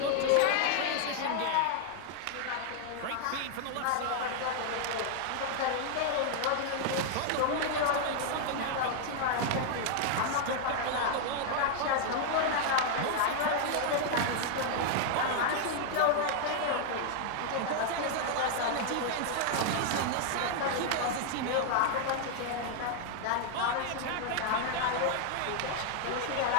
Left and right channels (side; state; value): both; different; correlation 0.00